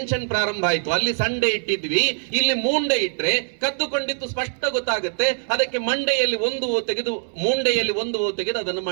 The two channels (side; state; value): left; silent; digital silence